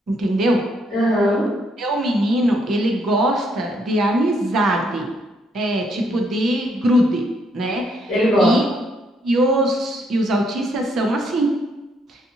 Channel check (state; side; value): normal; both; correlation 0.72